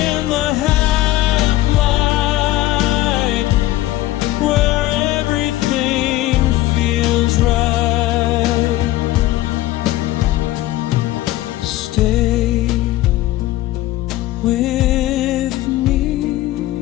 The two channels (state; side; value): quieter; right; 16.2 dB